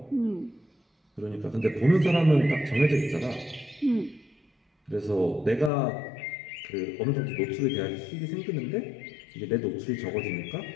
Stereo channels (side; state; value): right; drops out; at 5.7 s